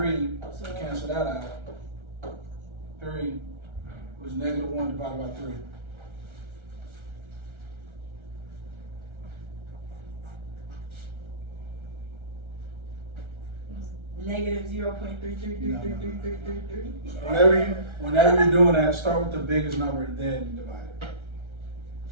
So to cancel that out. 3 was -1 divided by 3. -0.33333333. Whenever you're doing that, start with the biggest number and then divide it.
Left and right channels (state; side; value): late; left; 1.3 ms